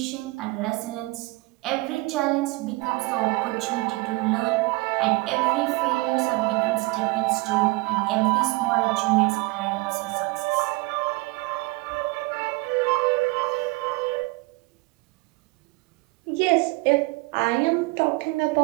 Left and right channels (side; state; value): left; quieter; 23.9 dB